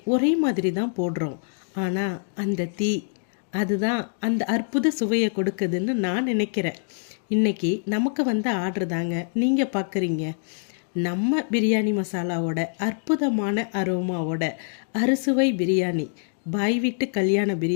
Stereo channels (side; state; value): right; silent; digital silence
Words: ஒரே மாதிரி தான் போடுறோம், ஆனால் அந்த தீ அதுதான் அந்த அற்புத சுவையை கொடுக்குதுன்னு நான் நினைக்கிறேன். இன்றைக்கி நமக்கு வந்த ஆர்டர் தாங்க நீங்கள் பார்க்குறீங்க. நம்ம பிரியாணி மசாலாவோட அற்புதமான அரோமாவோட அறுசுவை பிரியாணி, பாய் வீட்டு கல்யாண